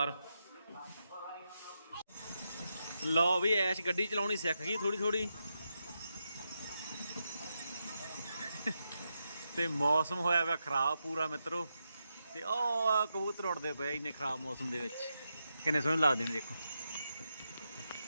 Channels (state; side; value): inverted; both; correlation -0.86